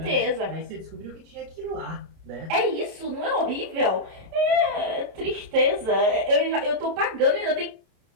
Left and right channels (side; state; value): left; late; 31 ms